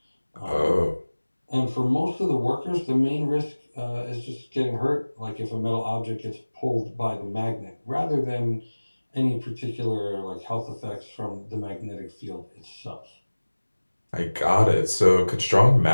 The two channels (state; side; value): inverted; both; correlation -1.00